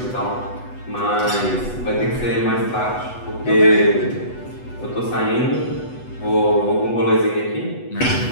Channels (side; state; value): right; late; 8.1 ms